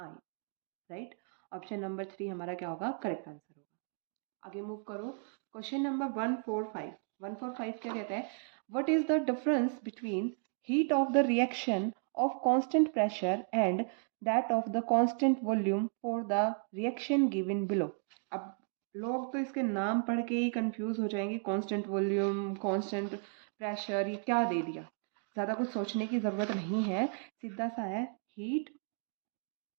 राइट। ऑप्शन नंबर 3 हमारा क्या होगा? करेक्ट आंसर होगा। आगे मूव करो, क्वेश्चन नंबर 145। 145 क्या कहता है? What is the difference between heat of the reaction of constant pressure and that of the constant volume for the reaction given below. अब लोग तो इसके नाम पढ़ के ही कंफ्यूज हो जाएंगे, कांस्टेंट वॉल्यूम, कांस्टेंट प्रेशर, ये क्या दे दिया। ज़्यादा कुछ सोचने की ज़रूरत नहीं है, सीधा सा है, हीट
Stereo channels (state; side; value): silent; left; 55 dB below the other